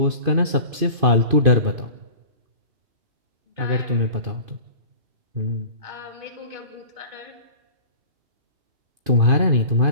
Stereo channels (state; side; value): late; left; 2.5 ms